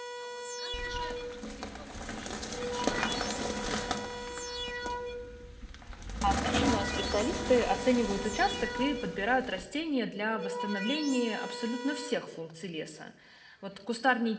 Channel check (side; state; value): both; identical; correlation 1.00